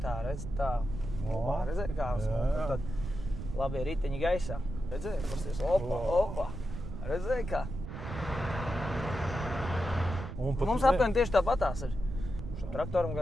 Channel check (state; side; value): noise; right; rumble, 8 dB below the sound